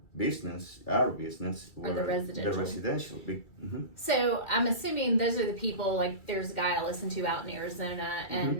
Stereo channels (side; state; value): right; late; 2.3 ms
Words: business, were the residential. So I'm assuming those are the people, like there's a guy I listen to out in Arizona,